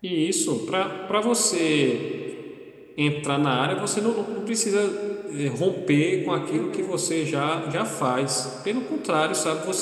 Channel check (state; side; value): identical; both; correlation 1.00